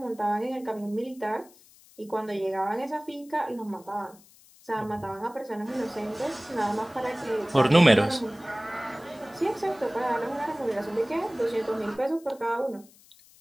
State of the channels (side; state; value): left; noise; hiss, 26 dB below the sound